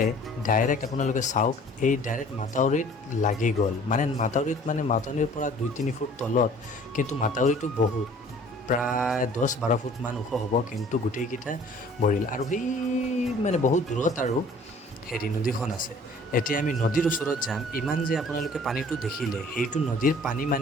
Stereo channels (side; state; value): both; normal; correlation 0.52